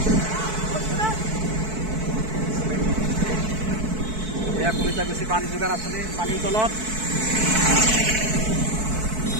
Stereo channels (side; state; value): left; late; 4.6 ms